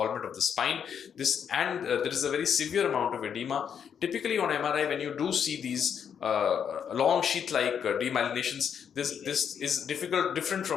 of the spine. There is a very severe amount of edema. Typically on MRI, when you do see these long sheath-like demyelinations, this is different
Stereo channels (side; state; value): right; quieter; 7.8 dB